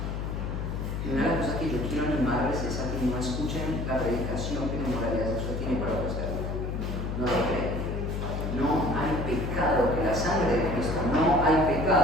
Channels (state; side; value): noise; left; hum, 3 dB below the sound